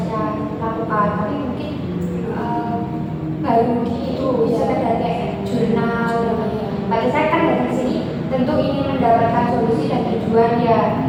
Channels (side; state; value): both; identical; correlation 1.00